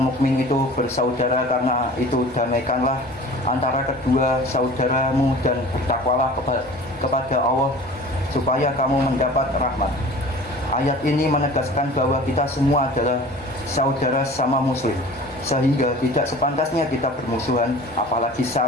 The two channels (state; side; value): normal; both; correlation 0.42